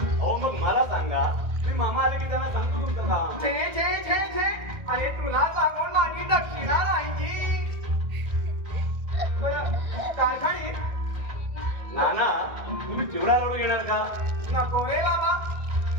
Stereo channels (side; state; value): left; late; 1.7 ms